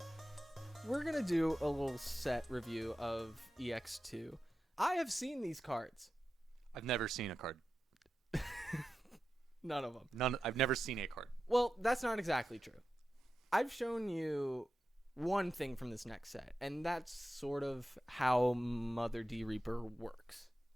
we're going to do a little set review of EX2. I have seen these cards. I've never seen a card. None of them. I've never seen a card. Well, that's not exactly true. I've shown you one thing from this next set, and that's sort of how Mother D Reaper works.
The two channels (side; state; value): both; normal; correlation 0.92